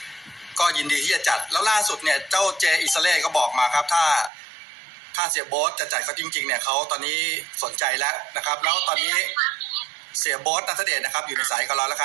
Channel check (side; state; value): left; drops out; at 4.3 s